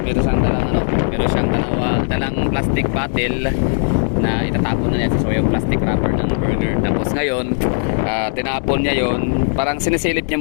meron siyang dalang plastic bottle na itatapon na niya sa yung plastic wrapper ng burger. Tapos ngayon, tinapon niya yon, parang sinisilip niya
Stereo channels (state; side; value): silent; right; digital silence